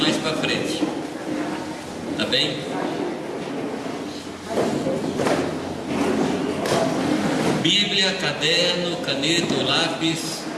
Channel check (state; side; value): identical; both; correlation 1.00